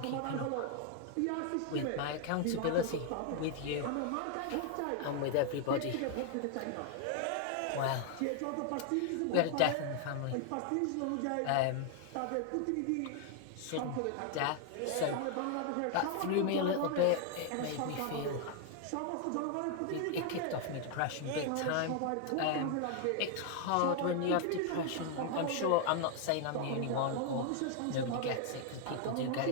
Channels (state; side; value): different; both; correlation 0.00